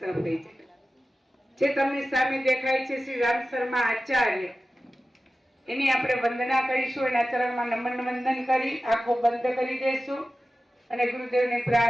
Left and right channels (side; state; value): both; normal; correlation 0.95